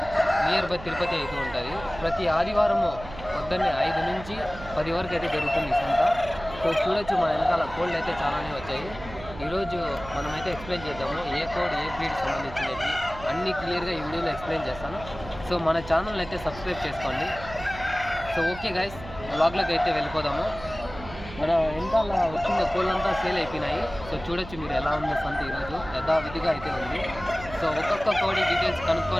near by Tirupati అయితే ఉంటుంది. ప్రతి ఆదివారము పొద్దున్నే 5 నుంచి 10 వరకు అయితే జరుగుతుంది ఈ సంత. సో చూడొచ్చు, మన వెనకాల కోళ్ళు అయితే చాలానే వచ్చాయి. ఈరోజు మనమైతే ఎక్స్ప్లెయిన్ చేద్దాము ఏ కోడ్ ఏ బ్రీడ్ సంబంధించినవి అన్నీ క్లియర్గా ఈ వీడియోలో ఎక్స్ప్లెయిన్ చేస్తాను. సో మన ఛానల్ని అయితే సబ్స్క్రైబ్ చేసుకోండి. సో ఓకే గైస్, వ్లాగ్లోకి అయితే వెళ్ళిపోదాము. మన వెనకాల వచ్చిన కోళ్ళంతా సేల్ అయిపోయినాయి. సో చూడొచ్చు మీరు ఎలా ఉందో సంత ఈరోజు యథావిధిగా అయితే ఉంది. సో ఒక్కొక్క కోడి డీటెయిల్స్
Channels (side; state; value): right; noise; hum, 14 dB below the sound